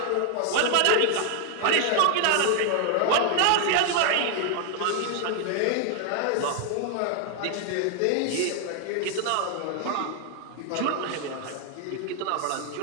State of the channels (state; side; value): different; both; correlation 0.00